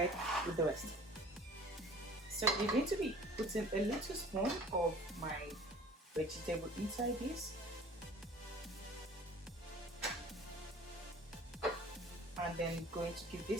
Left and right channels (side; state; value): both; normal; correlation 0.47